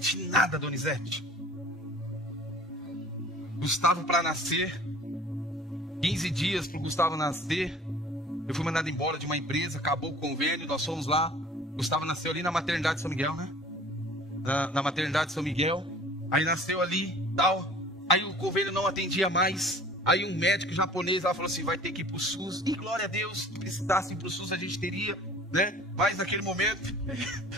nada, Donizete. Gustavo para nascer, 15 dias para o Gustavo nascer, eu fui mandado embora de uma empresa, acabou o convênio, nós fomos lá. Gustavo nasceu ali na maternidade de São Miguel, né? Na maternidade de São Miguel. Aí nasceu ali, tal. Aí o convênio não atendia mais. Aí um médico japonês lá falou assim: vai ter que ir para o SUS. E glória a Deus, se precisasse ir para o SUS a gente teria, né? Mas naquele momento,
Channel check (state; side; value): normal; both; correlation 0.47